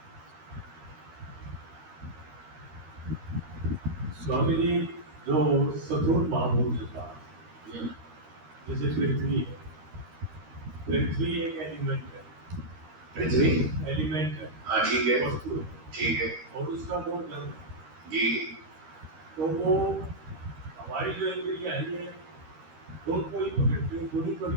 स्वामी जी, जो सतुर महाभूत के पास, जैसे पृथ्वी है, पृथ्वी एक एलिमेंट है, पृथ्वी एलिमेंट है, हाँ ठीक है, वस्तु है, ठीक है और उसका वो जल है। जी। तो वो हमारी जो इंद्रियां है, ये दोनों ही पकड़ती है, दोनों को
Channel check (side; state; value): left; late; 13 ms